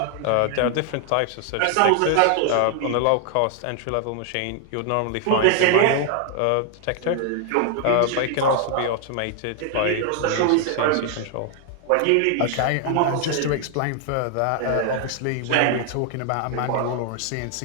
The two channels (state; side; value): different; both; correlation 0.00